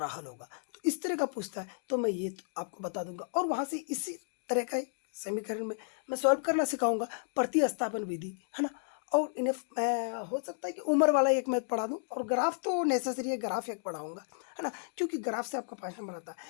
हल होगा। तो इस तरह का पूछता है तो मैं ये आपको बता दूंगा, और वहाँ से इसी तरह का समीकरण में मैं सॉल्व करना सिखाऊंगा, प्रतिस्थापन विधि, है ना। और इन्हें मैं हो सकता है कि उम्र वाला एक मैथ पढ़ा दूं, और ग्राफ तो नेसेसरी है, ग्राफ एक पढ़ाऊंगा, है ना, क्योंकि ग्राफ से आपका 5 नंबर आता है।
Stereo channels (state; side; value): silent; right; digital silence